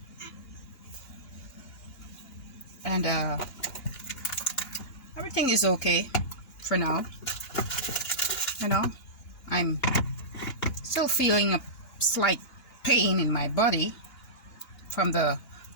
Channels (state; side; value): late; right; 2.9 ms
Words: And everything is okay for now. I'm still feeling a slight pain in my body from the